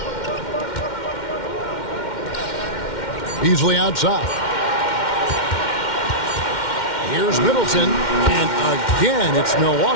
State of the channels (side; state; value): right; late; 2.1 ms